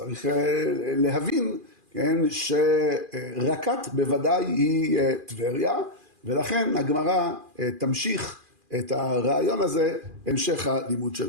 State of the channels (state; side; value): late; left; 2.4 ms